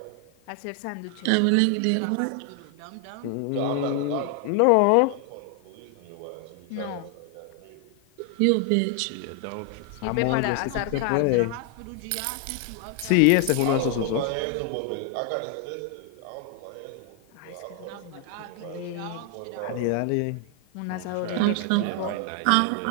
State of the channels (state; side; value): different; both; correlation 0.00